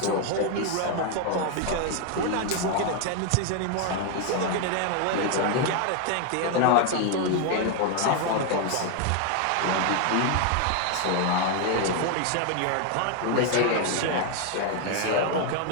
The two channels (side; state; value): both; different; correlation 0.01